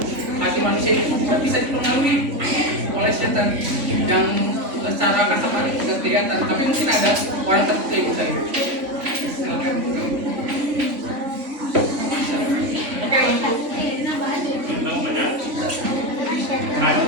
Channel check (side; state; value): left; late; 3.5 ms